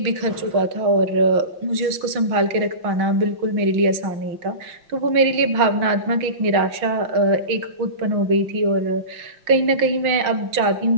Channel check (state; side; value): late; left; 5.7 ms